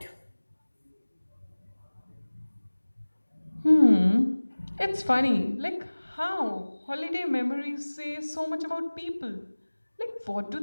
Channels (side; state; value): both; inverted; correlation -1.00